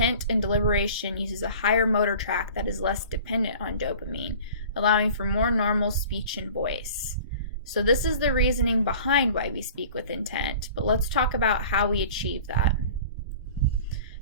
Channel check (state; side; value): inverted; both; correlation -0.43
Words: and deliberation uses a higher motor tract that is less dependent on dopamine, allowing for more normal speech and voice. So this is the reasoning behind why we speak with intent, but let's talk about how we achieve that.